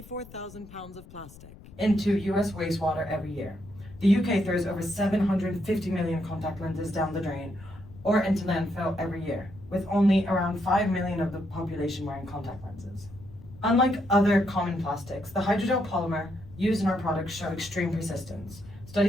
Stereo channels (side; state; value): left; noise; rumble, 19 dB below the sound